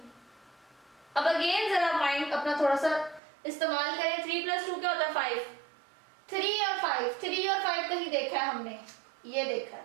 अब अगेन जरा माइंड अपना थोड़ा सा इस्तेमाल करें। 3 + 2 क्या होता है? 5। 3 और 5 कहीं देखा है हमने? ये देखा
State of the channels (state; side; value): drops out; left; at 3.2 s